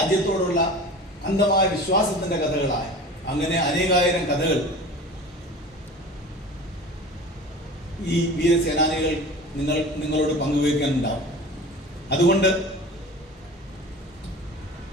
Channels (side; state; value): both; normal; correlation 0.37